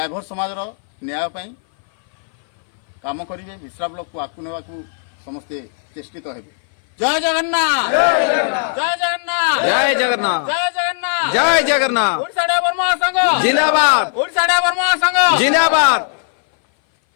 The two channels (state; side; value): silent; right; 59 dB below the other